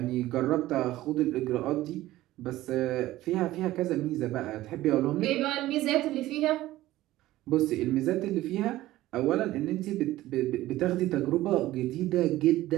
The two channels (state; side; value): quieter; left; 16.0 dB